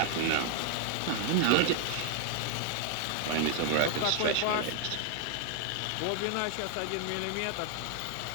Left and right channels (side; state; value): both; different; correlation 0.00